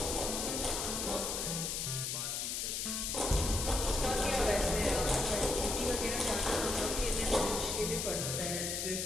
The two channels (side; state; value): left; noise; hiss, 1 dB below the sound